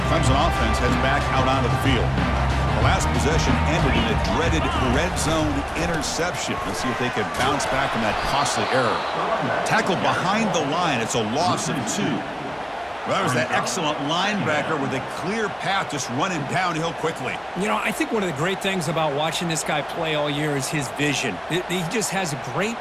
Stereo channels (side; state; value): both; identical; correlation 1.00